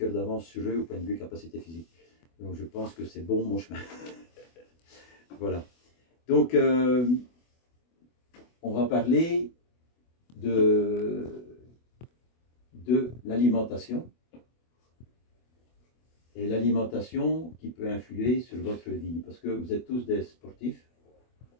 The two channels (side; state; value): right; late; 24 ms